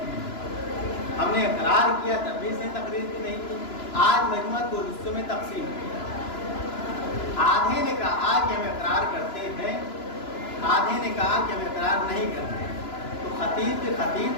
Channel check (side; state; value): right; late; 2.9 ms